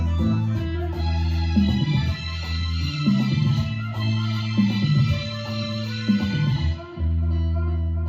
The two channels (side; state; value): both; identical; correlation 1.00